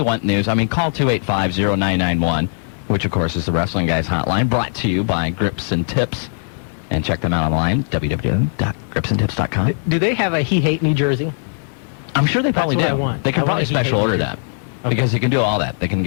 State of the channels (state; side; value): silent; right; 67 dB below the other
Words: want news, call 285-0991, which, of course, is the Wrestling Guys hotline, brought to you by Grips and Tips. And check them out online, www.gripsandtips.com. Do they have a He Hate Me jersey? I'm sure they probably do. I want. They can probably special order that. Okay. Because they can do all that. They can